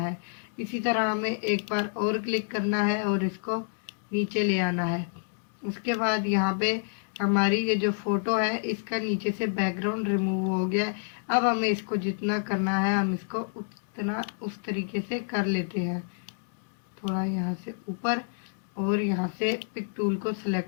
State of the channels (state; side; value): silent; right; digital silence